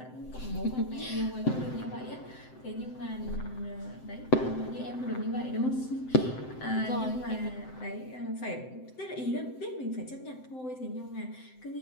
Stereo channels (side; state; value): right; late; 7.8 ms